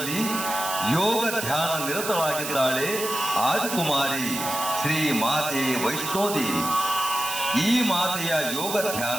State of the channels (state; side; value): noise; right; hiss, 5 dB below the sound